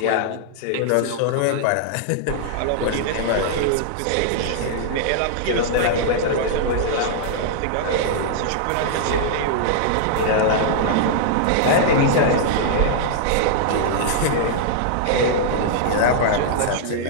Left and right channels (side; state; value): both; different; correlation -0.01